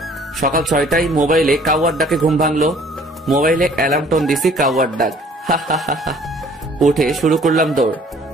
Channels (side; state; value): both; normal; correlation 0.55